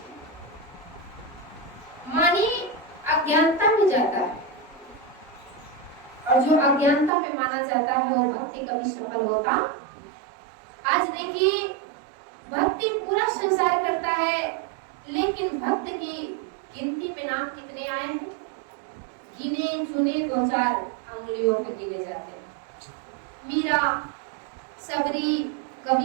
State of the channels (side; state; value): left; drops out; at 7.1 s